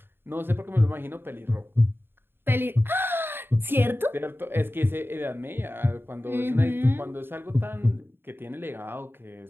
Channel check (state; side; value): late; left; 0.10 ms